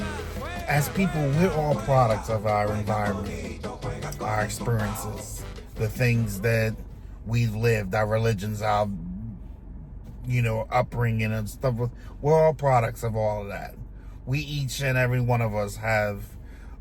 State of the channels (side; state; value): both; identical; correlation 1.00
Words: As people, we're all products of our environment, our experiences, the things that we've lived, our religions, our upbringing and stuff. We're all products of all of that. We, each and every one of us, have